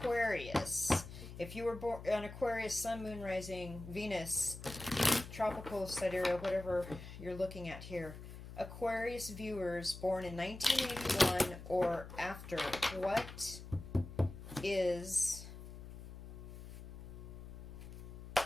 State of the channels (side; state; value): left; noise; hum, 12 dB below the sound